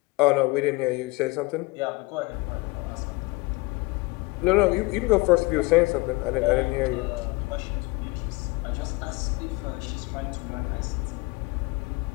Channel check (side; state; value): right; quieter; 23.4 dB